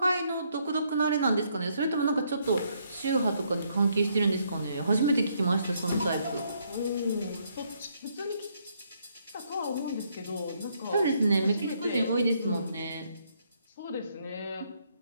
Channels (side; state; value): both; inverted; correlation -0.72